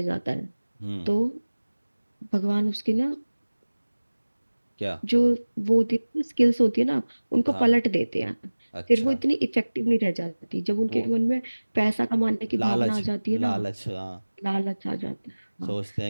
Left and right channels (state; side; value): inverted; both; correlation -1.00